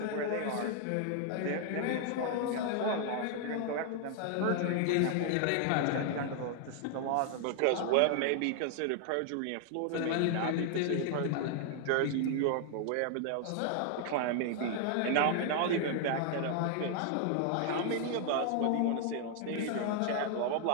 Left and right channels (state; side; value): different; both; correlation 0.00